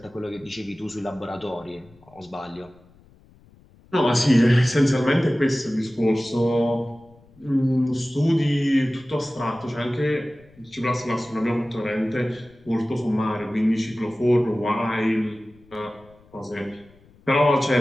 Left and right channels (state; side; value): noise; left; rumble, 28 dB below the sound